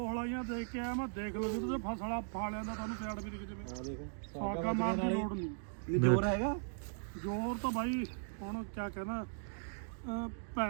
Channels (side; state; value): left; silent; digital silence